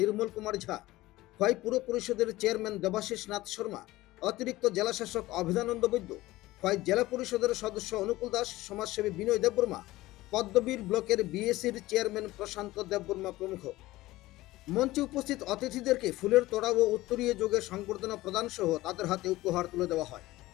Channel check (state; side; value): quieter; right; 17.8 dB